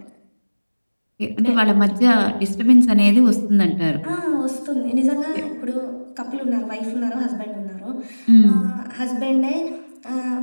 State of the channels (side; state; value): both; inverted; correlation -1.00